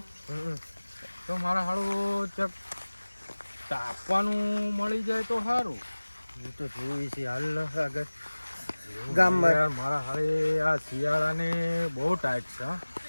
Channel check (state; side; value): inverted; both; correlation -1.00